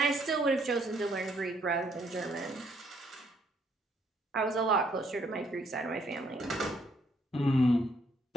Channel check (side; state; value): both; normal; correlation 0.69